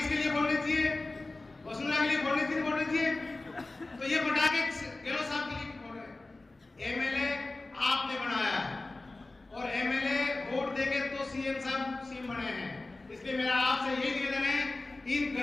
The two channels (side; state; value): right; quieter; 3.1 dB